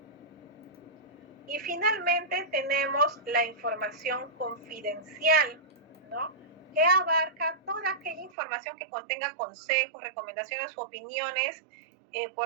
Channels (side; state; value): left; drops out; at 8.3 s